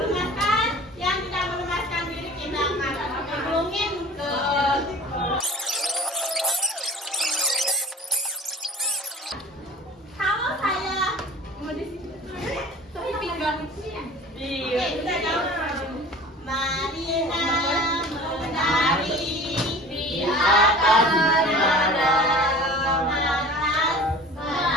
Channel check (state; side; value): normal; both; correlation 0.42